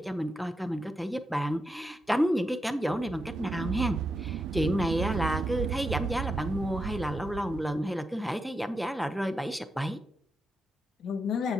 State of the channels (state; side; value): normal; both; correlation 0.85